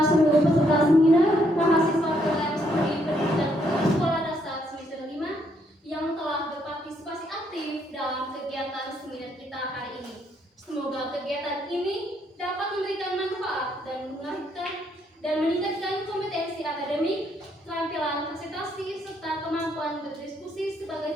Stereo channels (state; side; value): normal; both; correlation 0.72